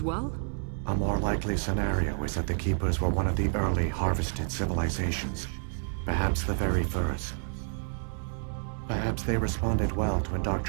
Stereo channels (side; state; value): left; silent; 58 dB below the other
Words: well? A more likely scenario is that the Keepers were one of the early harvested civilizations. Perhaps the very first. Perhaps they responded well to